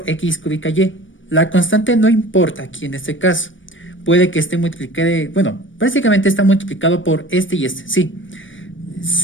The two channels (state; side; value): late; right; 0.56 ms